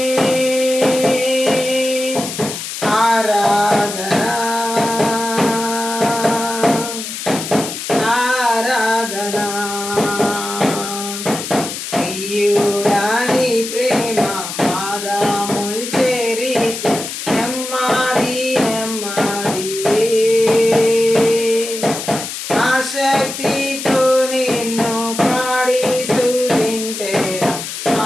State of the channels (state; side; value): noise; left; hiss, 7 dB below the sound